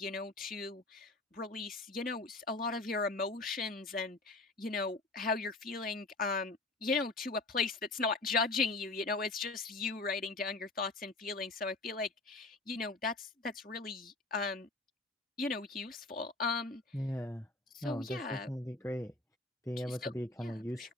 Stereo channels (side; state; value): right; quieter; 3.2 dB